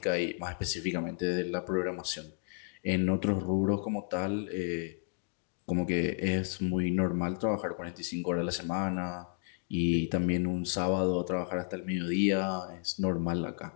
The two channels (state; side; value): silent; right; 56 dB below the other